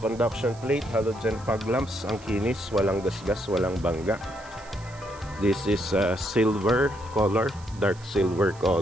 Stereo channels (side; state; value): right; noise; hiss, 23 dB below the sound